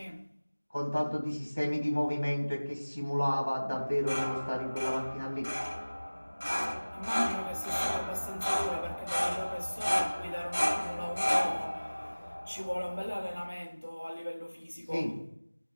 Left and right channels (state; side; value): inverted; both; correlation -1.00